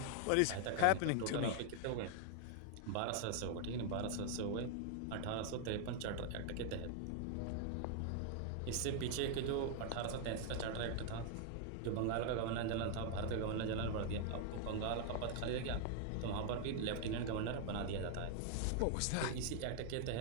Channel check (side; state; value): both; different; correlation 0.00